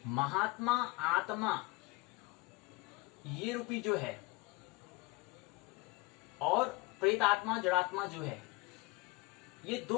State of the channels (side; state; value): right; quieter; 23.8 dB